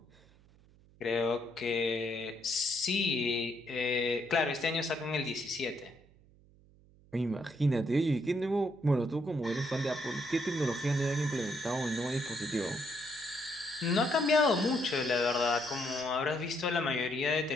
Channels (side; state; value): right; noise; hum, 27 dB below the sound